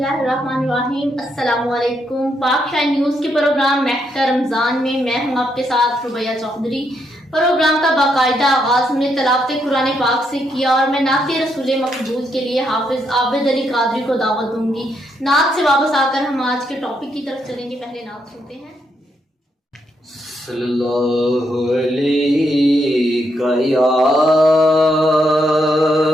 الرحمن الرحیم۔ السلام علیکم۔ پاک شاہ نیوز کے پروگرام مہکہ رمضان میں میں ہوں آپ کے ساتھ ربیہ چودھری۔ پروگرام کا باقاعدہ آغاز ہم نے تلاوت قرآن پاک سے کیا اور میں نعت رسول مقبول کے لیے حافظ عابد علی قادری کو دعوت دوں گی۔ نعت سے واپس آ کر ہم آج کے ٹاپک کی طرف چلیں گے۔ پہلے نعت سنتے ہیں۔ صلی اللہ علیہ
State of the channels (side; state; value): both; normal; correlation 0.78